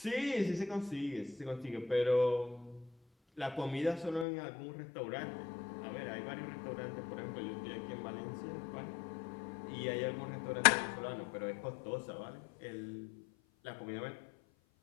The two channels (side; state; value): right; drops out; at 4.2 s